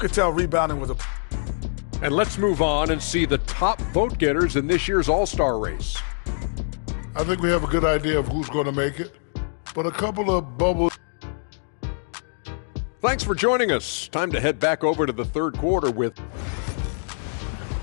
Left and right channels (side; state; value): right; silent; digital silence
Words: tell rebounding was a... And let's move on and see the top vote getters in this year's All-Star race. I think we have a good idea of who's going to make it, but a couple of bubbles. Thanks for joining us. Time to head back over to the third quarter with...